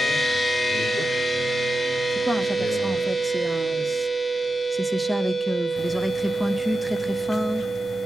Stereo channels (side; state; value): both; normal; correlation 0.91